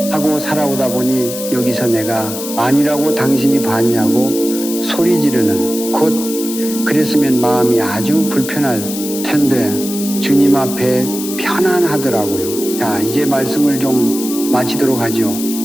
하고 살아오다 보니 여기서 내가 아니라고 당신이 봤냐고 소리 지르는, 곧 그랬으면 마음이 아주 불편할 텐데 주님 앞에 편안하더라고요. 자, 이제 말씀을 좀 마치도록 하죠.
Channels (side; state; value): left; noise; hiss, 8 dB below the sound